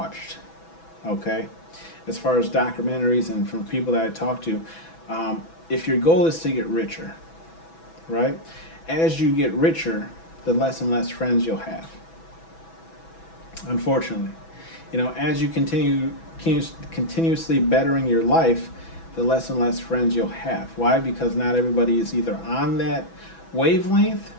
okay, as far as documentaries and from people that I talk to, if your goal is to get richer, right? As you get richer, the less and less friends you'll have. Unfortunately, as you continuously bettering your life, the less and less friends you'll have. Why? Because not everybody is either on that wavelength,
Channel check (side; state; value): right; late; 6.1 ms